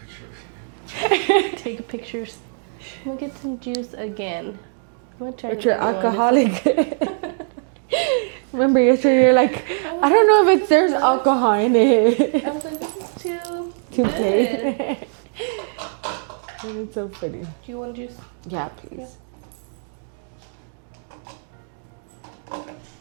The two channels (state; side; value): silent; left; 64 dB below the other